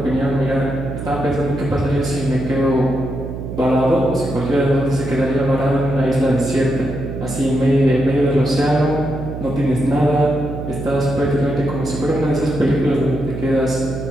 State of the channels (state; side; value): noise; right; hum, 7 dB below the sound